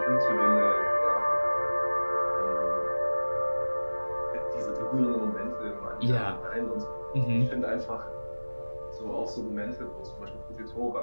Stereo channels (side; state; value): both; inverted; correlation -1.00